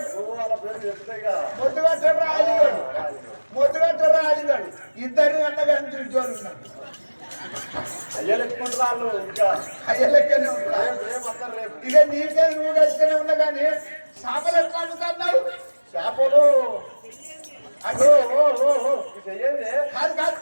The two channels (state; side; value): inverted; both; correlation -1.00